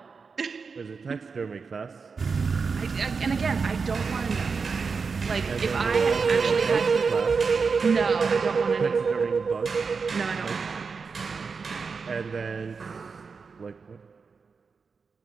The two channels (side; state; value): left; quieter; 5.1 dB